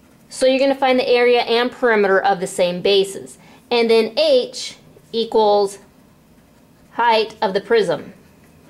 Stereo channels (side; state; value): both; identical; correlation 1.00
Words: So you're going to find the area and perimeter of the same bases. And then H equals height of the prism.